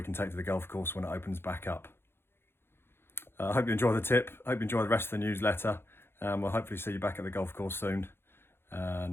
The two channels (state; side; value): late; right; 0.11 ms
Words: can take to the golf course when it opens back up. I hope you enjoy the tip, hope you enjoy the rest of the newsletter, and we'll hopefully see you back at the golf course soon,